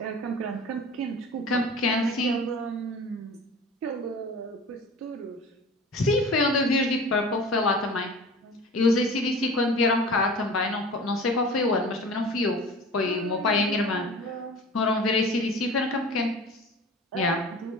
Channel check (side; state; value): both; normal; correlation 0.39